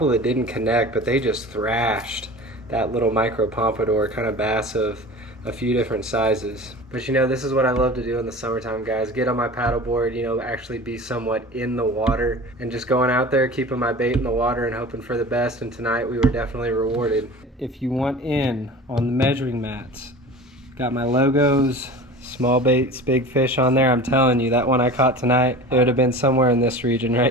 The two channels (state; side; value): normal; both; correlation 0.37